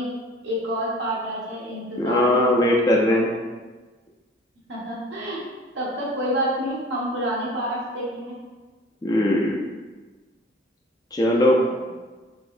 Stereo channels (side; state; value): both; normal; correlation 0.47